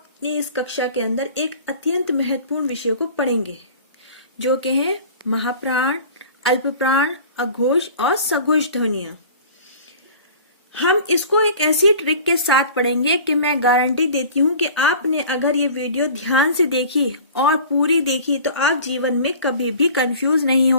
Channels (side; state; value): both; inverted; correlation -0.43